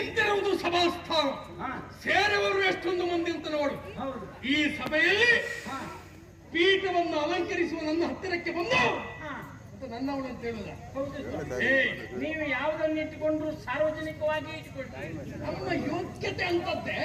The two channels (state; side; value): identical; both; correlation 1.00